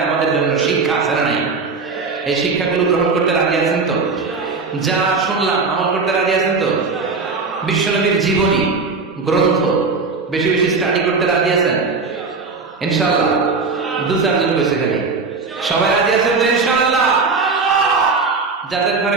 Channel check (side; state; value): left; quieter; 4.4 dB